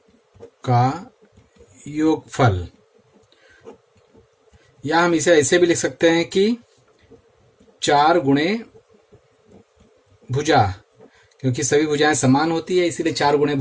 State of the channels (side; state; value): both; identical; correlation 1.00